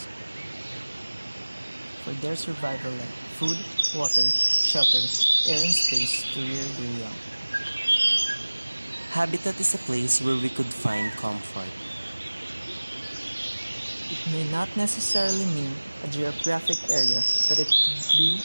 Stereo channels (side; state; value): both; inverted; correlation -1.00